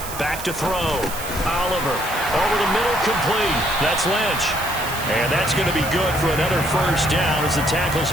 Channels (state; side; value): noise; right; hiss, 10 dB below the sound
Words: Back to throw. Oliver. Over the middle, complete. That's Lynch. And that's going to be good for another first down as the tackle's